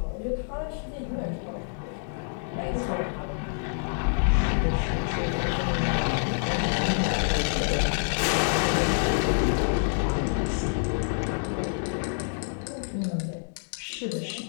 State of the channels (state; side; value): silent; right; digital silence